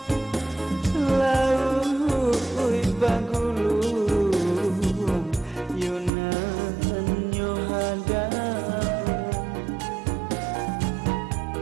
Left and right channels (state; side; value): drops out; left; at 6.1 s